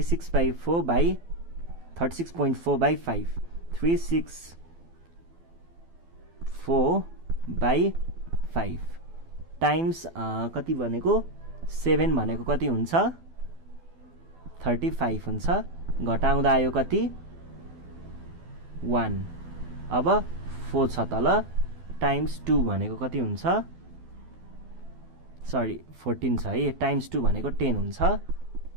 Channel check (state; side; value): late; left; 12 ms